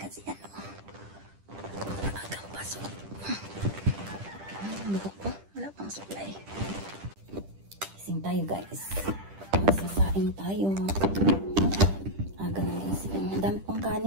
ano. Agang pasok. Bukok ko. Wala pang supply. Gising tayo guys. Magsasaing tayo. Aga na gising. Ang dami pang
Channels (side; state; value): left; late; 10 ms